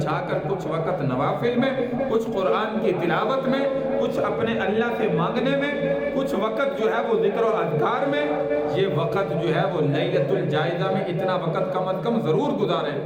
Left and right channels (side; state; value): both; identical; correlation 1.00